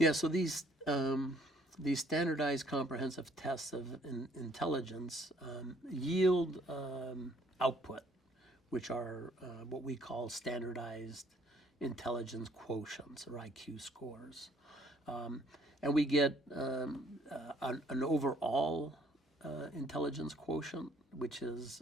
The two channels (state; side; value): normal; both; correlation 0.62